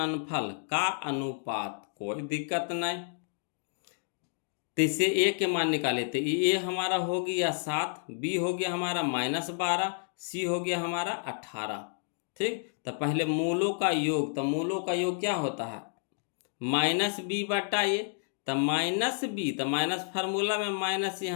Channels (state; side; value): silent; right; digital silence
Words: का अनुपात, कोई दिक्कत नहीं। तो इसे ए के मान निकाले, तो ए हमारा हो गया 7, बी हो गया हमारा -12, सी हो गया हमारा 18, ठीक। तो पहले मूलों का योग, तो मूलों का योग क्या होता है -b बटा ए, तो -b, तो माइनस फार्मूला में माइनस